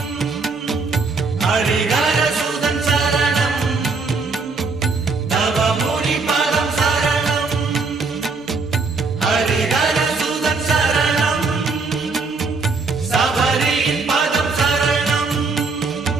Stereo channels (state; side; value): quieter; left; 4.2 dB